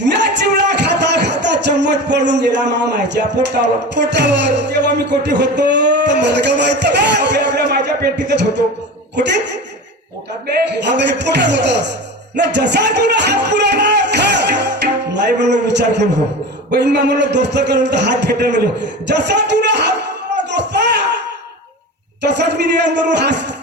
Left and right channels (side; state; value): both; normal; correlation 0.30